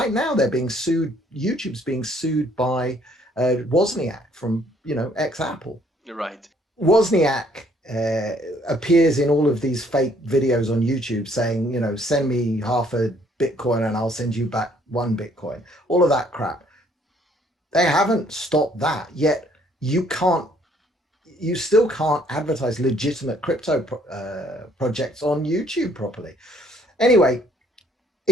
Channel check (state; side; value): normal; both; correlation 0.64